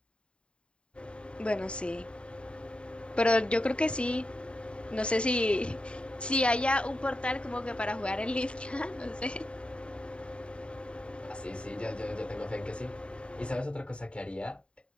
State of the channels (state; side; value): late; right; 0.055 ms